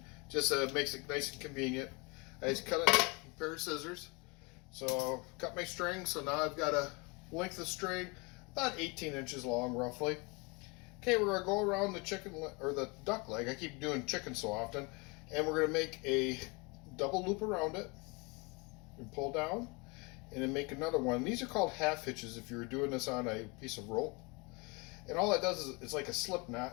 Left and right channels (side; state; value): right; quieter; 28.3 dB